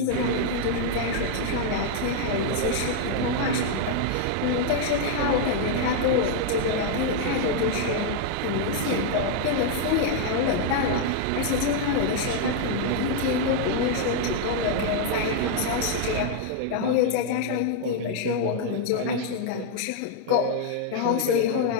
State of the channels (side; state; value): both; different; correlation 0.00